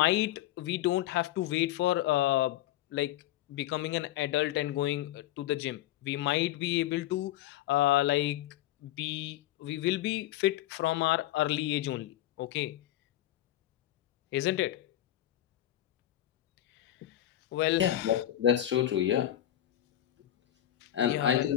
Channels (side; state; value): right; quieter; 13.3 dB